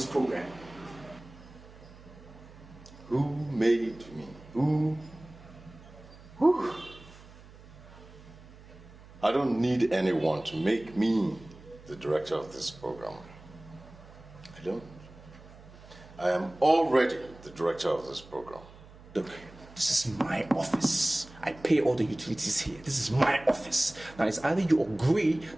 program? Who made me? Who? I don't need anyone to make me the director of this program. I don't. I am already the director of this program. Look, this is my office. I pay all the utilities here. This is my office. Now it's either you agree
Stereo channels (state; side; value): noise; right; hum, 20 dB below the sound